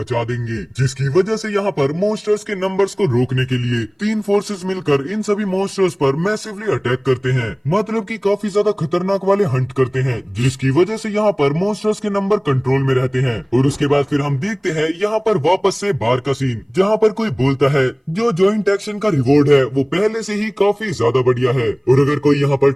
देंगे, जिसकी वजह से यहाँ पर मॉन्स्टर्स के नंबर्स को रोकने के लिए 3 फोर्सेस मिलकर इन सभी मॉन्स्टर्स पर मैसिवली अटैक करते हैं, मतलब कि काफी ज्यादा खतरनाक वाले हंट करते हैं, जिसकी वजह से यहाँ पर मॉन्स्टर्स के नंबर कंट्रोल में रहते हैं। और उसके बाद फिर हम देखते हैं यहाँ पर वापस से बार का सीन, जहाँ पर कोई बोलता है जो ज्वाइंट एक्शन का रिवॉर्ड है वो पहले से ही काफी ज्यादा बढ़िया है और अगर कोई यहाँ पर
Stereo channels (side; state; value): both; identical; correlation 1.00